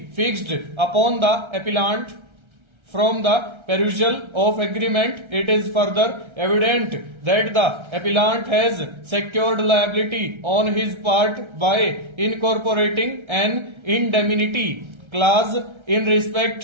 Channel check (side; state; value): left; late; 1.3 ms